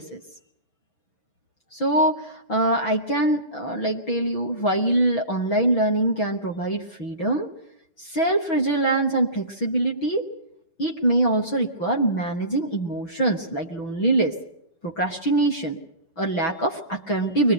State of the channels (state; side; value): late; right; 6.1 ms